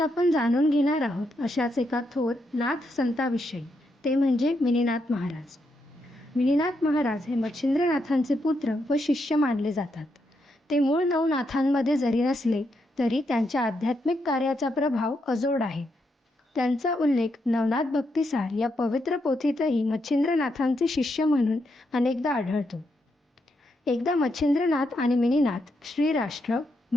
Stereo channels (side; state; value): both; normal; correlation 0.80